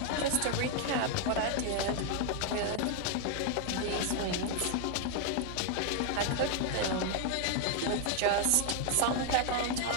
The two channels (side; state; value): both; different; correlation 0.00